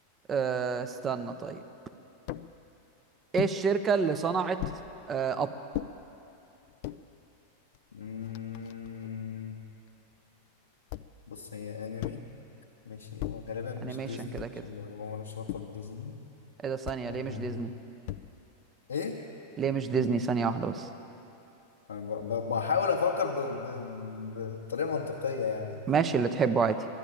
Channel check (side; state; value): both; normal; correlation 0.24